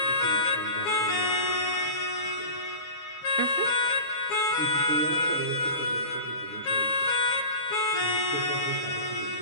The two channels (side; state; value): right; late; 7.1 ms